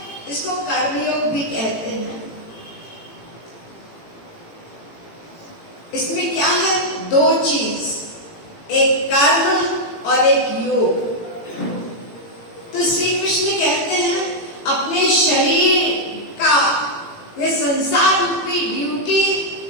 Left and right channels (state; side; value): late; right; 18 ms